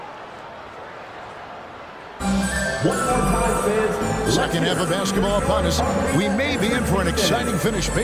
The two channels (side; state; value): both; identical; correlation 1.00